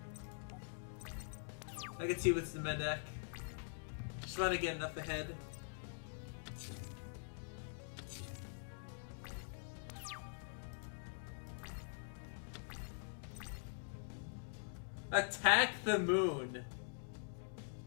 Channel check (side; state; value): right; silent; digital silence